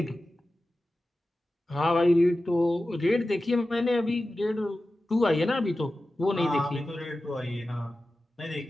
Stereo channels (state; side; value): normal; both; correlation 0.94